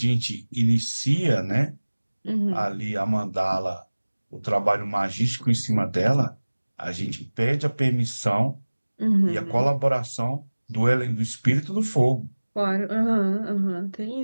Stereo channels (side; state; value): both; inverted; correlation -1.00